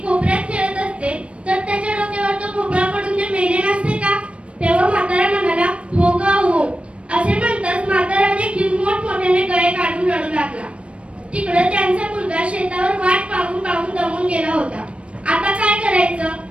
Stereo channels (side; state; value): left; late; 0.061 ms